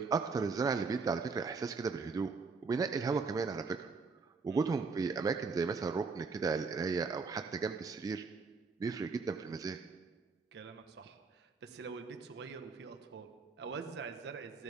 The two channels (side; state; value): left; quieter; 4.7 dB